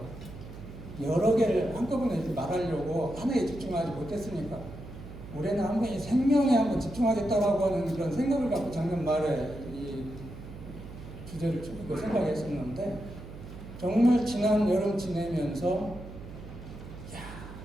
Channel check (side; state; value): right; noise; hum, 13 dB below the sound